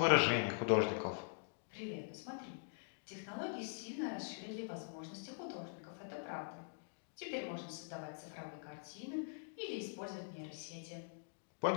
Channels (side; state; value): right; silent; digital silence